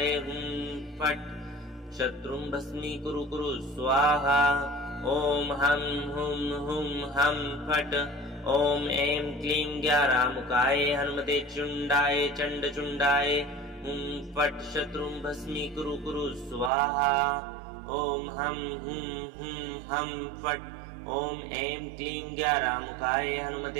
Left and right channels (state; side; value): drops out; left; at 16.7 s